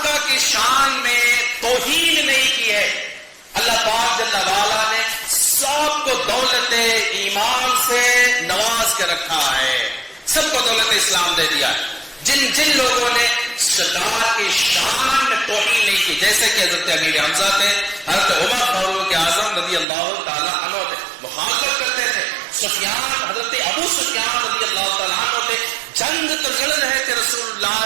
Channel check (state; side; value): drops out; left; at 19.9 s